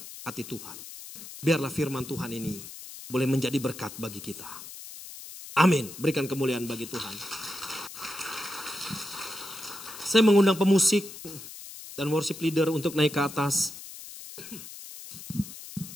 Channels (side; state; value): left; noise; hiss, 13 dB below the sound